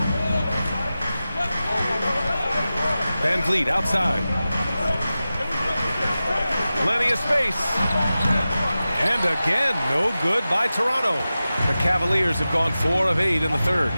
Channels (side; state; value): both; inverted; correlation -0.95